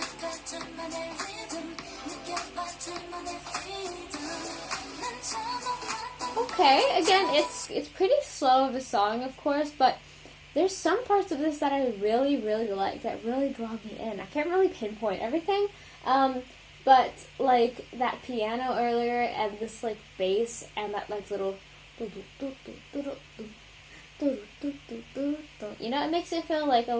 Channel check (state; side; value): identical; both; correlation 1.00